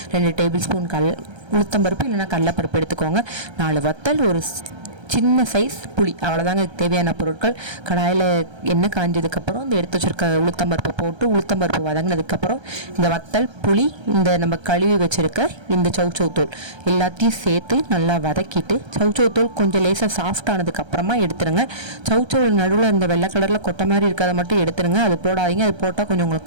2 டேபிள் ஸ்பூன் உளுத்தம்பருப்பு இல்லைன்னா கடலைப்பருப்பு எடுத்துக்கோங்க. 4 வத்தல், ஒரு சின்ன சைஸ் புளி, அவ்வளோதாங்க தேவையான பொருட்கள். கடாயில் எண்ணெய் காஞ்சதுக்கப்புறம் இந்த எடுத்து வச்சுருக்க உளுத்தம்பருப்பை போட்டு உளுத்தம்பருப்பு வதங்கினதுக்கப்புறம் இந்த வத்தல், புளி, இந்த நம்ம கழுவி வச்சுருக்க இந்த சௌ தோல் எல்லாத்தையும் சேர்த்து நல்லா வதக்கிட்டு சௌ தோல் கொஞ்சம் லேசாக சாஃப்ட் ஆனதுக்கப்புறமா எடுத்துருங்க. சௌ நடுவில் இந்த வெள்ளை கலரில் கொட்டை மாதிரி இருக்கிறத மட்டும் எடுத்துருங்க. அது போடாதீங்க. அது போட்டால் கொஞ்சம்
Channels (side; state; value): left; late; 1.3 ms